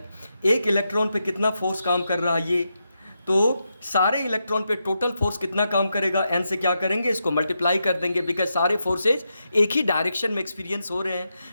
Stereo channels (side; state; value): both; inverted; correlation -0.85